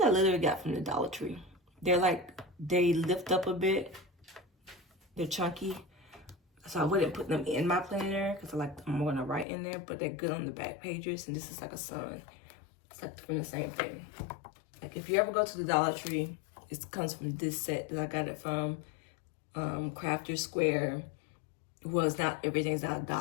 I literally got from the Dollar Tree. They're like, they lift up a bit. They're chunky. So I wouldn't put them in my planner because I'm going to write in there. But they're good on the back pages. And this is like a sun. It's like from the same thing. Like if you ever go to the Dollar Tree, it comes from this set that I got it from Crafter Square. Was not, everything's not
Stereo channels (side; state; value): right; drops out; at 9.5 s